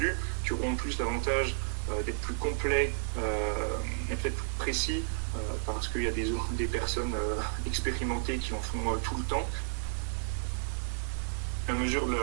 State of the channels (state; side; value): silent; left; digital silence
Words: qui auront plus l'avantage d'être plus complets et peut-être plus précis parce qu'il y a des personnes expérimentées qui en font tout le temps. La mesure